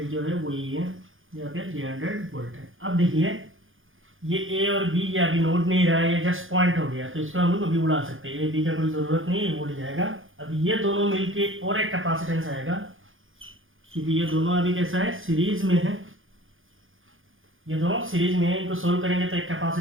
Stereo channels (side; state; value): left; late; 0.58 ms